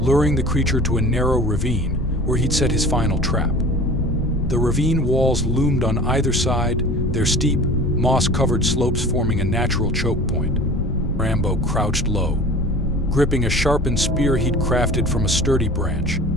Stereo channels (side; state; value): left; noise; rumble, 8 dB below the sound